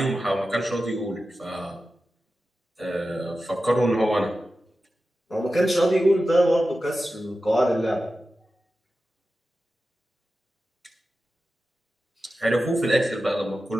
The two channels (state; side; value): normal; both; correlation 0.93